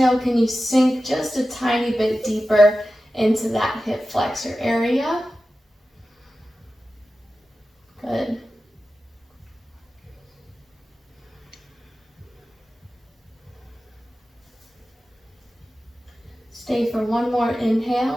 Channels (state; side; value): normal; both; correlation 0.94